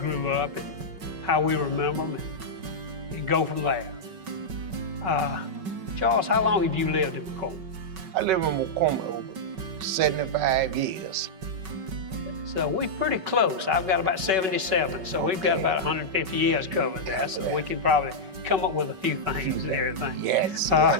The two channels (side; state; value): left; late; 5.3 ms